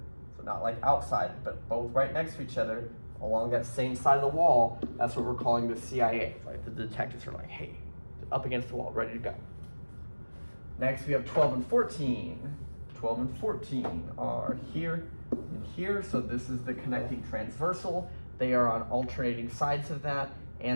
so not like outside, but both right next to each other along that same side of the wall, that's what we're calling the CIA. Right? The detectives are like, hey, up against the wall, ready to go. Next we have 12 and 14. 12 and 14 are here and here, so this is the connecting transversal. They are on alternating sides of that,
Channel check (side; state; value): both; inverted; correlation -1.00